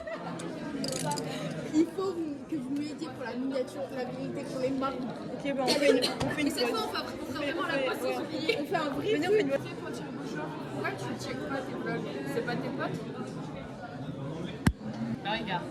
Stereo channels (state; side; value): identical; both; correlation 1.00